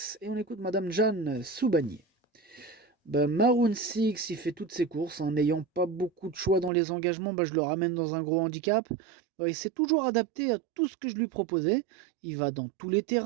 et on écoute Madame Jeanne Soubanier. Maroon 6, il fait toutes ses courses, n'ayant pas beaucoup de choix dans les engagements, je le ramène dans un gros handicap. Il s'est toujours adapté à tout ce que je lui proposais. Il va dans tous les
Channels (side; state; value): left; drops out; at 6.7 s